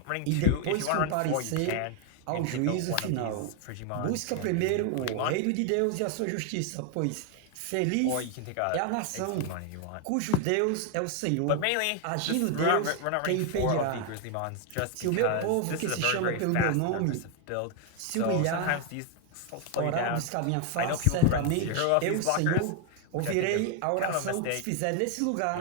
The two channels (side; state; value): both; different; correlation 0.00